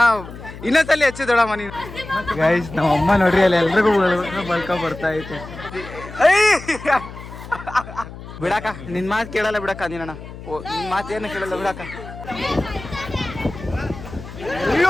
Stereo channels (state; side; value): noise; left; hum, 14 dB below the sound